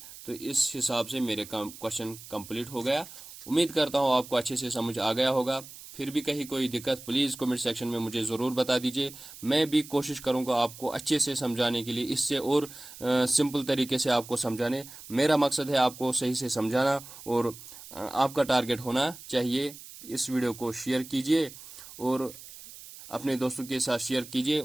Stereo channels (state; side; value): noise; right; hiss, 16 dB below the sound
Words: तो इस हिसाब से मेरे क्वेश्चन कंप्लीट हो गया। उम्मीद करता हूँ आपको अच्छे से समझ आ गया होगा। फिर भी कहीं कोई दिक्कत प्लीज़ कमेंट सेक्शन में मुझे ज़रूर बता दीजिए। मैं भी कोशिश करूँगा आपको अच्छे से समझाने के लिए, इससे और सिंपल तरीके से आपको समझाने। मेरा मकसद है आपको सही से समझाना और आपका टारगेट होना चाहिए। इस वीडियो को शेयर कीजिए और अपने दोस्तों के साथ शेयर कीजिए